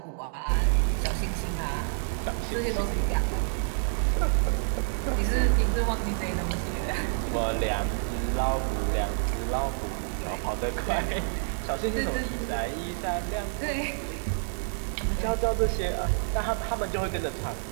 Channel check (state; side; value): silent; left; digital silence